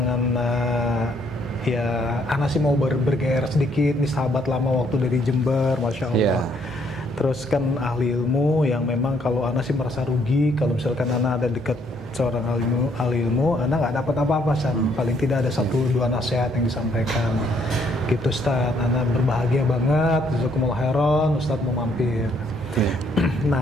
ya Ana sih mau bergairah sedikit nih, sahabat lama waktu dari Jember, Masya Allah. Terus kan ahli ilmu yang memang kalau Ana sih merasa rugi kalau misalkan Ana ada dekat seorang ahli ilmu, Ana nggak dapat apa-apa, paling tidak ada 1-2 nasihat yang disampaikan gitu Ustaz. Ana berbahagia banget, jazakumullah khairan, Ustaz mau mampir.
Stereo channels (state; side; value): normal; both; correlation 0.69